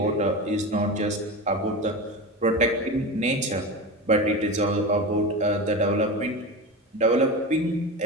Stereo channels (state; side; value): normal; both; correlation 0.25